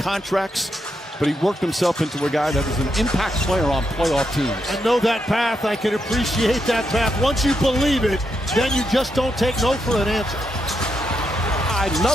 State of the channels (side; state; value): both; normal; correlation 0.82